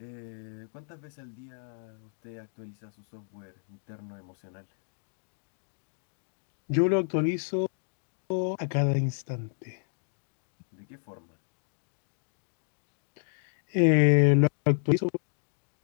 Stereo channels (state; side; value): silent; right; digital silence